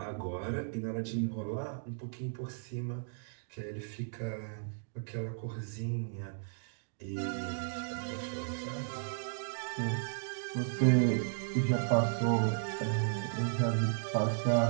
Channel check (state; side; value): silent; left; digital silence